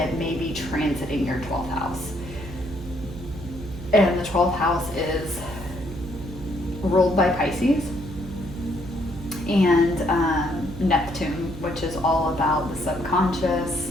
may be transiting your 12th house. And the 12th house is ruled by Pisces and Neptune, which is all about the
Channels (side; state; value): right; noise; hum, 12 dB below the sound